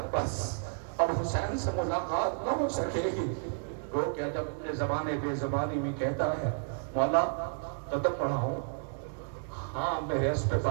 بس اب حسین سے ملاقات نہ ہو سکے گی۔ وہ کیا جب اپنے زبان بے زبانی میں کہتا ہے، مولا قدم بڑھاؤں؟ ہاں میرے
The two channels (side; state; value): left; silent; digital silence